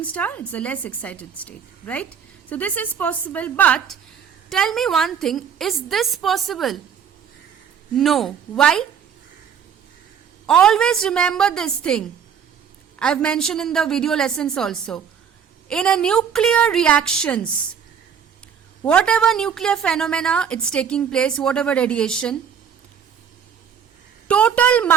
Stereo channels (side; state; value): left; quieter; 7.6 dB